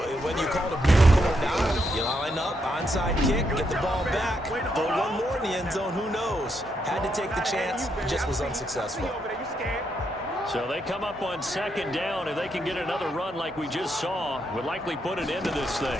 whether you call it a miracle or not, you line up, onside kick, get the ball back. Throw one more in the end zone, who knows? Had to take the chance, just was unsuccessful. So they come up on second down, and they can get another run like we just saw. Would likely put an end to this thing.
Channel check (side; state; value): both; normal; correlation 0.79